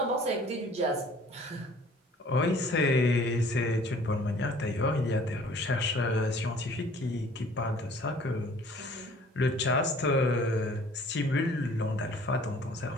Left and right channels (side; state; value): both; normal; correlation 0.53